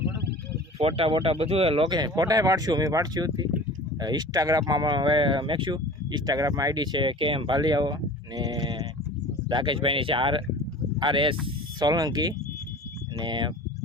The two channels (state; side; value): normal; both; correlation 0.40